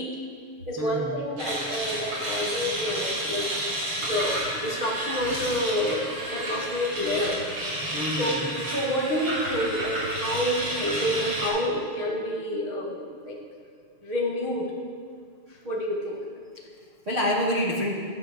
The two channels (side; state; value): left; late; 7.0 ms